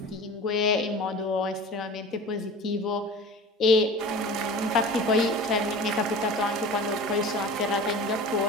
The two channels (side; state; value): both; normal; correlation 0.37